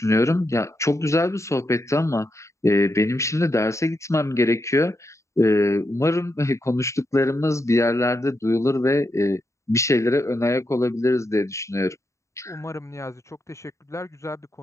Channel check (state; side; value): late; right; 0.14 ms